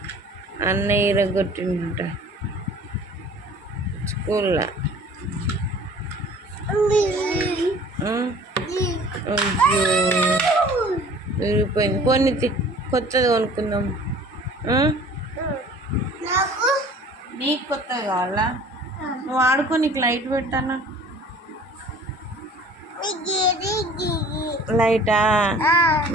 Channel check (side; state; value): both; normal; correlation 0.48